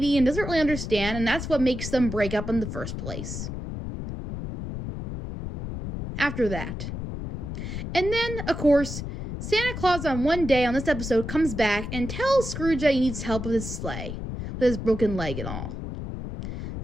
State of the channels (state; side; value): noise; left; rumble, 6 dB below the sound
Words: and doesn't really understand, and that's what makes them break up in the first place. After that. And then, of course, Santa Claus on one day on this episode comes back and tells Scrooge that he needs help with his sleigh, with his broken leg and all.